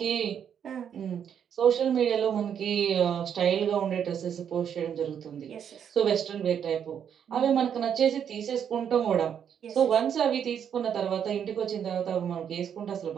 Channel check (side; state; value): left; quieter; 8.4 dB